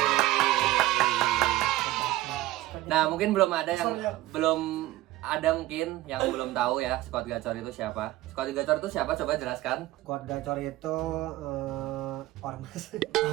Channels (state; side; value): quieter; left; 16.5 dB